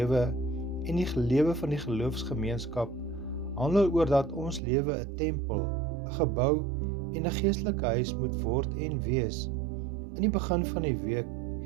en die lewe van die geloofsgemeenskap handel oor dat ons lewe 'n tempel, 'n gebou en 'n geestelike huis moet word en wees. In die begin van die week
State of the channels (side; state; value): left; drops out; at 4.6 s